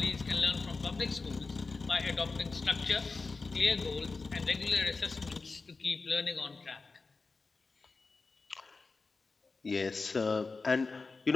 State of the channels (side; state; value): right; quieter; 4.1 dB